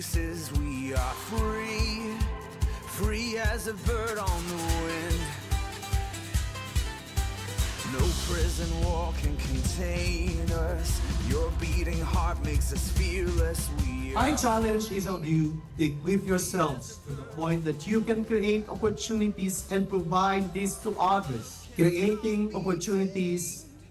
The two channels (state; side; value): identical; both; correlation 1.00